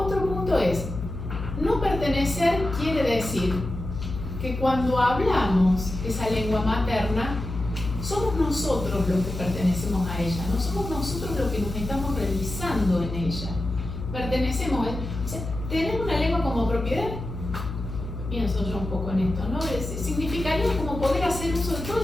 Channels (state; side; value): noise; left; hum, 7 dB below the sound